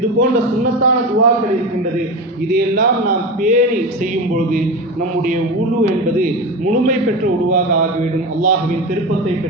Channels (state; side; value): normal; both; correlation 0.23